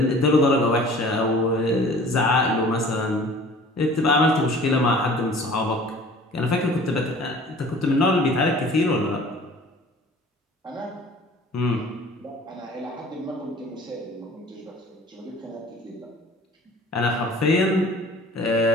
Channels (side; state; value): both; normal; correlation 0.47